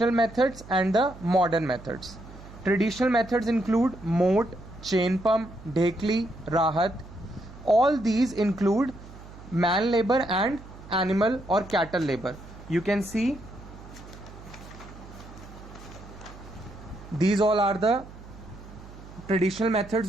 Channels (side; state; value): right; noise; hum, 17 dB below the sound